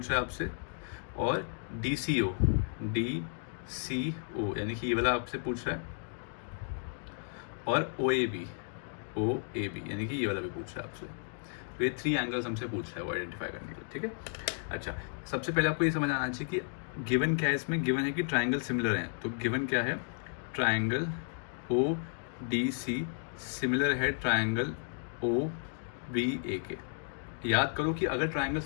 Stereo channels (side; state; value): right; silent; digital silence